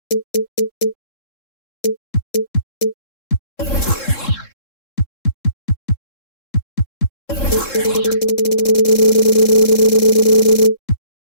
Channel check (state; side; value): late; right; 3.7 ms